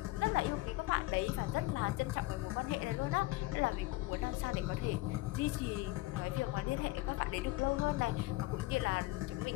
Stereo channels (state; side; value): quieter; right; 19.4 dB